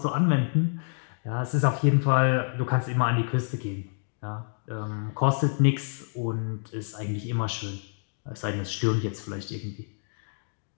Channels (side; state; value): right; silent; digital silence